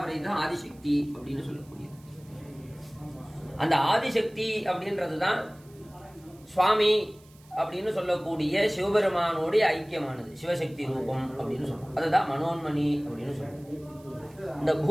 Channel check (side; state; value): right; noise; hiss, 28 dB below the sound